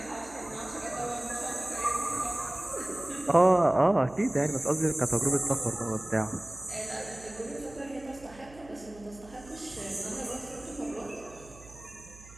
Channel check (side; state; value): right; noise; hum, 21 dB below the sound